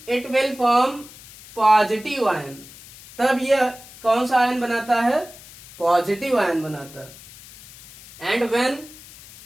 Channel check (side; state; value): left; noise; hiss, 19 dB below the sound